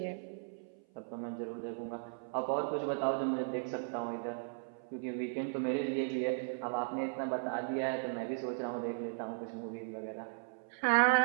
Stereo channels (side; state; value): left; silent; 53 dB below the other